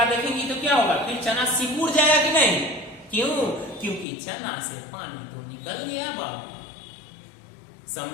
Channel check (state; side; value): drops out; right; at 4.0 s